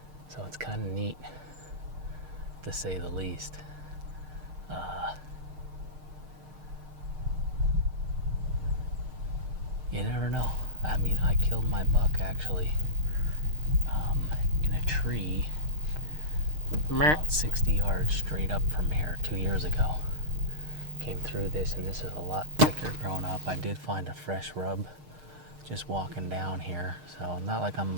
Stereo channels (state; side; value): late; left; 6.5 ms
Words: So it's kind of neat, to say the least. You never know. I mean, I killed my buck actually in a tree about 60 yards straight up from here 2 years ago. Came through this, and this is a lot thicker grown up. I did find a fresh rub just walking down here. So not like I'm